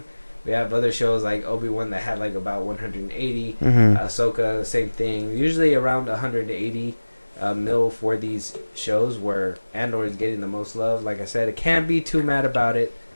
We have other shows like Obi-Wan that had like about 180. Ahsoka, same thing. Usually around 180 mil for these shows where Andor is getting the most love. Like I said, I can't be too mad about it.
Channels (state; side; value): inverted; both; correlation -1.00